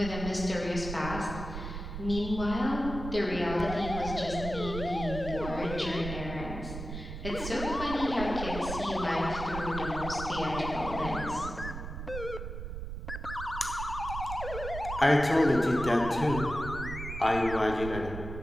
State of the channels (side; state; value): right; noise; rumble, 7 dB below the sound